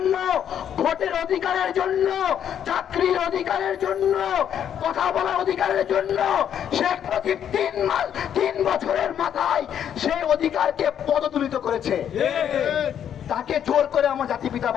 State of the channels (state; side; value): quieter; right; 9.3 dB